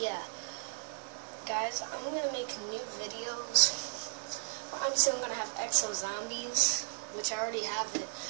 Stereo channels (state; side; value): silent; left; digital silence